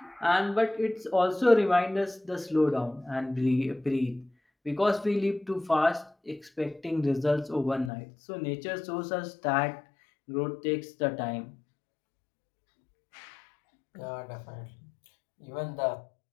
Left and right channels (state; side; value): drops out; right; at 7.9 s